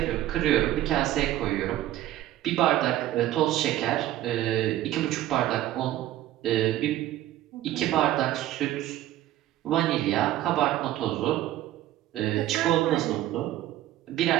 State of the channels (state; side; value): quieter; left; 13.9 dB